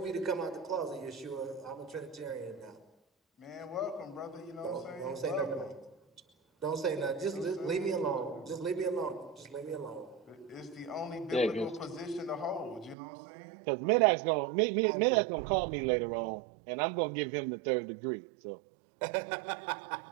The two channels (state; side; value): drops out; left; at 13.0 s